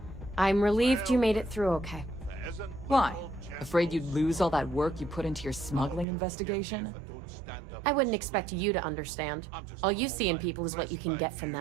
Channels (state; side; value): drops out; left; at 6.1 s